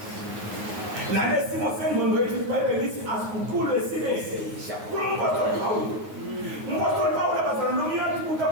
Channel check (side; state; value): left; late; 9.5 ms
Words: Nalesimo sengqondo yethu iBhayibheli lithi asiguqulwe sibe sisha. Kumpostoli Pawulo. Umpostoli Pawulo abazalwane nomyeni